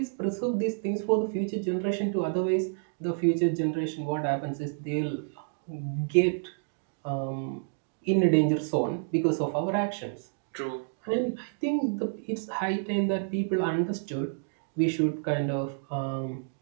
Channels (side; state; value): left; silent; digital silence